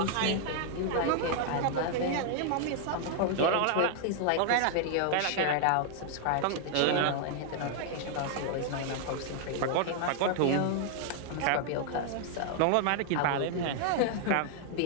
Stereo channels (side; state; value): both; different; correlation 0.00